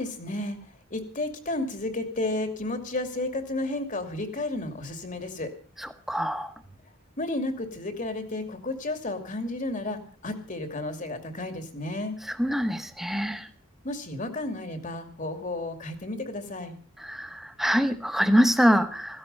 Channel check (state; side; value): normal; both; correlation 0.72